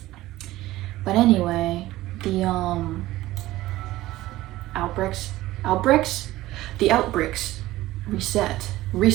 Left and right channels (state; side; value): quieter; left; 16.6 dB